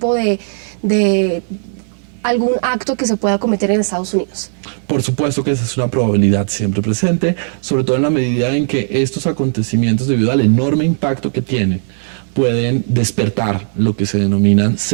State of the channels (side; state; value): left; silent; digital silence